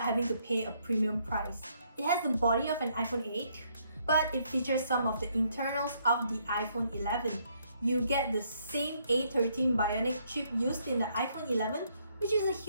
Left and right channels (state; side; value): inverted; both; correlation -0.71